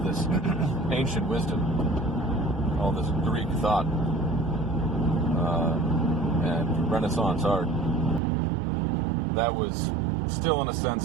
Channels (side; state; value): left; drops out; at 8.2 s